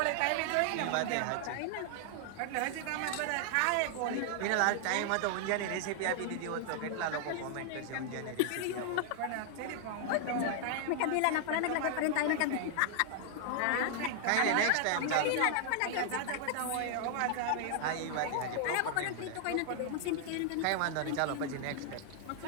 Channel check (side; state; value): both; different; correlation -0.01